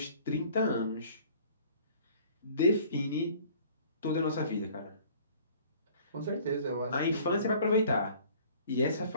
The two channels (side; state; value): both; inverted; correlation -0.52